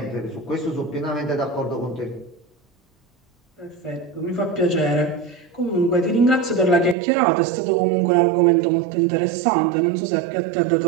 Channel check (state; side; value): drops out; left; at 7.0 s